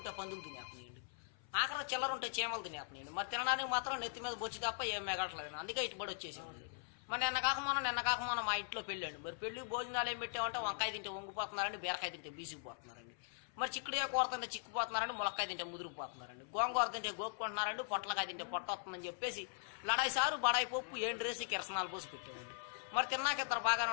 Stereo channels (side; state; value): right; silent; 51 dB below the other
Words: పందులు తినేస్తున్నాయండి, ఆఖరి చిల్లర ఉంటే చీమలు తినేస్తున్నాయండి. మరి తినడానికి మాత్రం నెత్తి మీద బొచ్చి తప్ప ఏం మెగట్లేదు. అందుకే ఇటుబడి వచ్చేసామండి. మరి నిన్న కాక మా ఇంట్లో పెళ్ళండి. మరి పెళ్లి భోజనాలు ఏం పెట్టామంటే వంకాయ తింటే వంగిపోతున్నారండి, బీరకాయ తింటే బీసిపోతున్నారండి, మరి చిక్కుడుగా కూర తింటే చిక్కుపోతున్నారండి, ములక్కాయ తింటే ముదిరిపోతున్నారండి, గోంగూర తింటే గోక్కుంటున్నారండి, పొట్లకాయ తింటే పొట్ట వస్తుందని చెప్పేసి లడాయి సారు బడాయి పప్పు ఏండ్రేసి కిరసనాలు పోసి పెట్టారండి. మరి తిన్నాక ఇద్దరు బాగానే